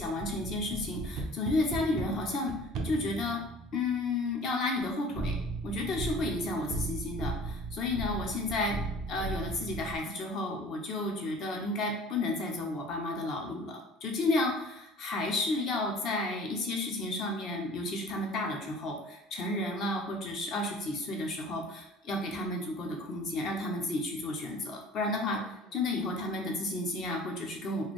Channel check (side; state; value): both; normal; correlation 0.47